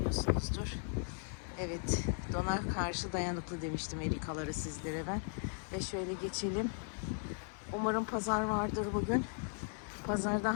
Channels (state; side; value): silent; right; 53 dB below the other